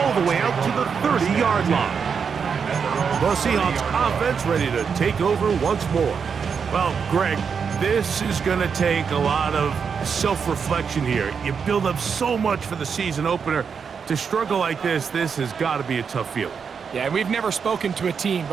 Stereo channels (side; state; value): left; quieter; 6.3 dB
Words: the way out to the 30-yard line. The Seahawks offense ready to take over once more. Well, Greg, this is going to take a lot of self-reflection here. You build up so much for the season opener. To struggle like this has got to be a tough feeling. Yeah, we've never spoken to a team